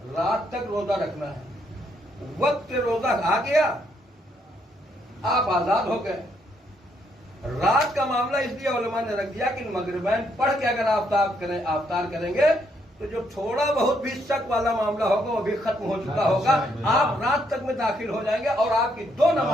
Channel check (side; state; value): both; normal; correlation 0.73